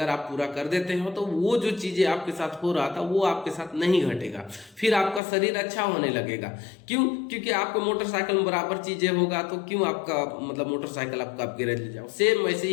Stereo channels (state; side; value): drops out; right; at 5.2 s